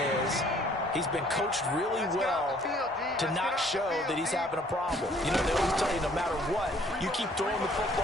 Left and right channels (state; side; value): normal; both; correlation 0.59